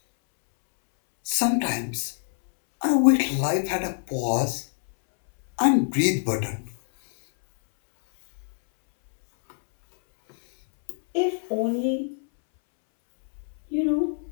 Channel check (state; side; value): silent; right; 62 dB below the other